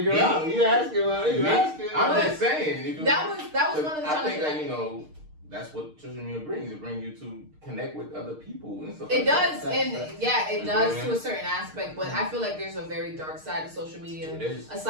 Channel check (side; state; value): left; late; 6.5 ms